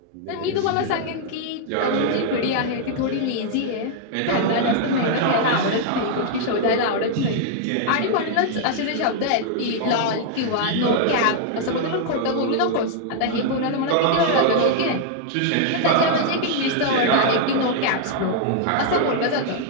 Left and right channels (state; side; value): different; both; correlation -0.01